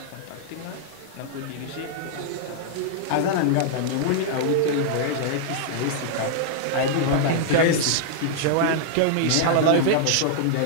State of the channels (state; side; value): different; both; correlation -0.01